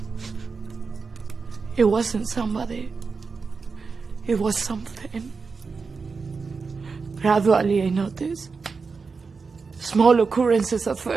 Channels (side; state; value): left; quieter; 4.8 dB